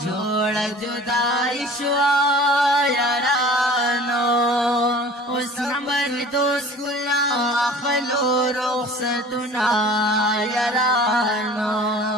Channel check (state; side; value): normal; both; correlation 0.45